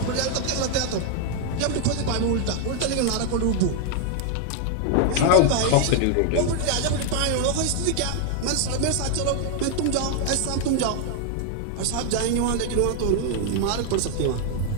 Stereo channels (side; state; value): both; different; correlation 0.00